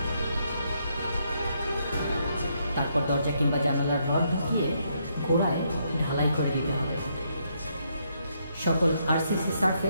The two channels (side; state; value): both; inverted; correlation -0.75